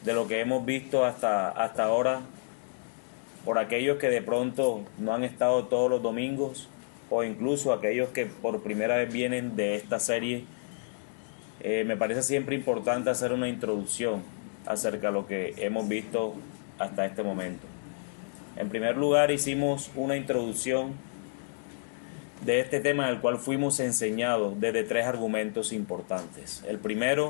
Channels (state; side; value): silent; right; digital silence